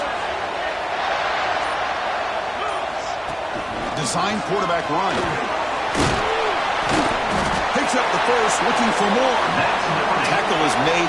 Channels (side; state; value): both; identical; correlation 1.00